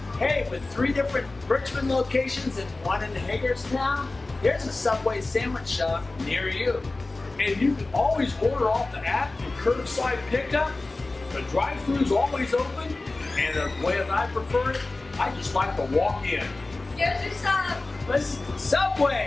Hey, with 3 different Richmond locations and 1 in Hagerstown, there's a Subway sandwich shop near you. And you can always order off the app for curbside pickup. The drive-thru's always open, and the way that I prefer it, I just like to walk in. Here's your sub. Listen,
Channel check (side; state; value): right; quieter; 3.2 dB